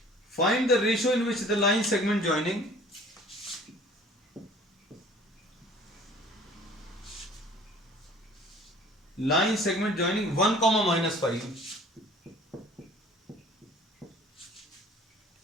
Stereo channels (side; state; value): both; normal; correlation 0.50